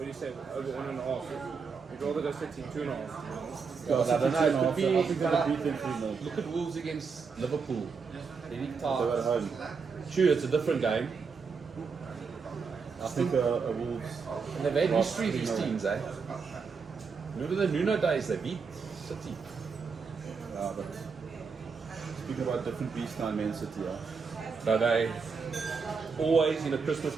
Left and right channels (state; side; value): quieter; left; 5.3 dB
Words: do you say, over 1.5. You'd rather go City 2.5. Yeah, I don't know, it could I be- think they'll beat them 3-0. Look at Wolves against Liverpool. Very They're at tight. home. True, it's a different game. I think a Wolves. And they've had Lost history, these 3-0. teams, eh? Remember the Nuno days, they beat City. But speaking about different beasts now in Man City, So they always in a Christmas